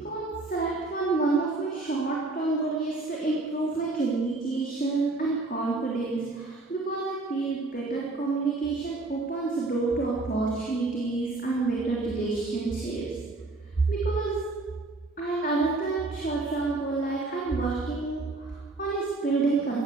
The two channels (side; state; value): left; quieter; 3.3 dB